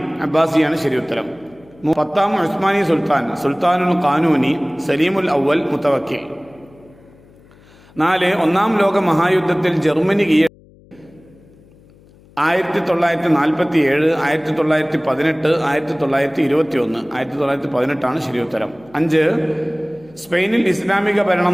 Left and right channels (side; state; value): left; noise; hum, 27 dB below the sound